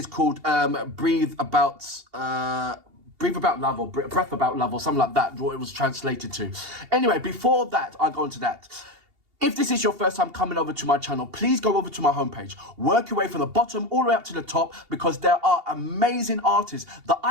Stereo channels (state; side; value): late; left; 2.8 ms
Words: called Breathe About Love, or Breath About Love, or something like that, what it was translated to. Anyway, before that, I go into that. If this is your first time coming over to my channel, please go over to my homepage. Work your way from the bottom all the way up to the top, because there are amazing artists that